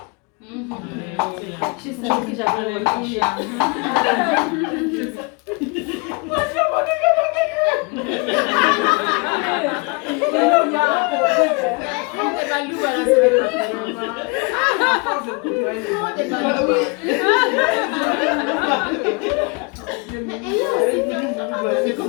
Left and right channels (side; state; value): right; quieter; 30.4 dB